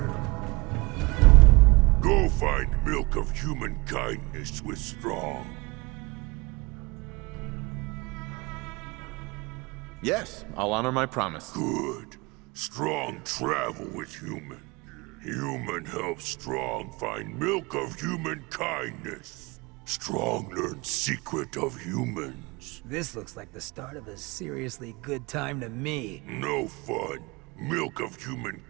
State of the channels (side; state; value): left; quieter; 25.1 dB